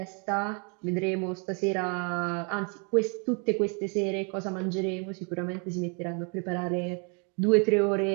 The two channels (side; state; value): left; quieter; 36.5 dB